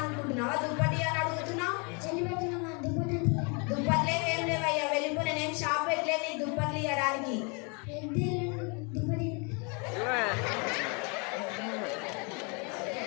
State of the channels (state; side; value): quieter; right; 33.5 dB